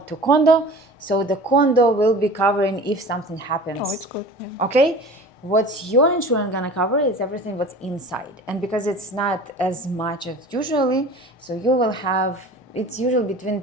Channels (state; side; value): normal; both; correlation 0.40